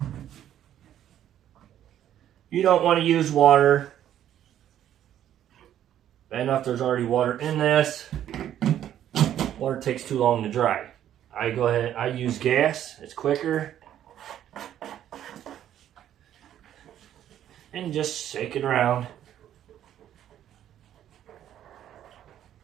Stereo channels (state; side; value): quieter; left; 11.0 dB